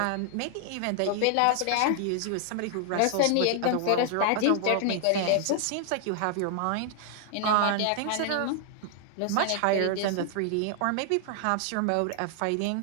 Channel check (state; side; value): different; both; correlation 0.00